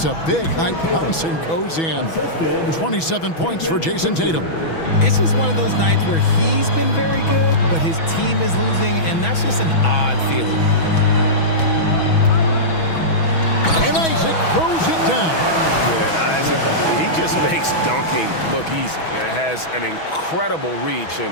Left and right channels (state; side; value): late; right; 6.1 ms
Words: a big high bounce and goes in. 27 points for Jason Tatum. It's just one of those nights where he's been very good, but his team is losing, and that's just an odd feeling. And Isaac throws it down. Yeah, and Isaac, he just makes dunking look easy. It has an incredible reach